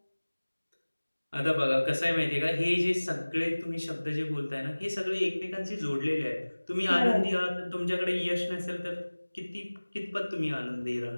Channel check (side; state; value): both; inverted; correlation -1.00